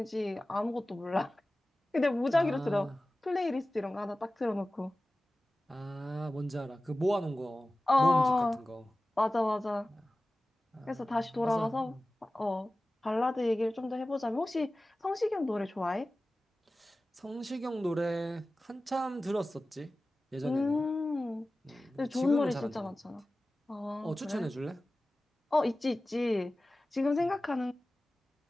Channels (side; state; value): both; normal; correlation 0.96